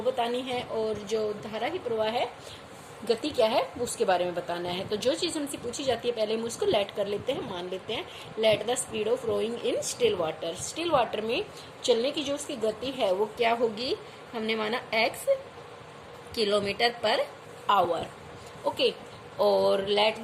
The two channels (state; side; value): identical; both; correlation 1.00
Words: बतानी है, और जो धारा की प्रवाह है, गति क्या है, उसके बारे में बताना है। तो जो चीज हमसे पूछी जाती है पहले हम उसको लेट कर लेते हैं, मान लेते हैं। Let the speed of rowing in still water. Still water में चलने की जो उसकी गति है वो क्या होगी, हमने माना x kilometre per hour. Okay, और let